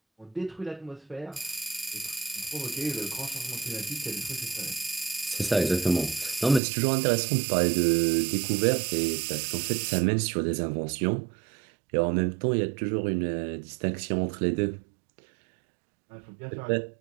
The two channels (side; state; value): left; drops out; at 6.6 s